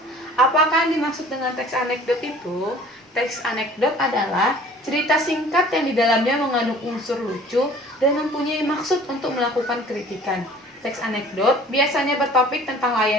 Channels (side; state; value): both; normal; correlation 0.49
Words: Apakah yang dimaksud dengan teks anekdot itu? Teks anekdot adalah cerita singkat yang di dalamnya mengandung unsur lucu dan mempunyai maksud untuk melakukan kritikan. Teks anekdot biasanya bertopik tentang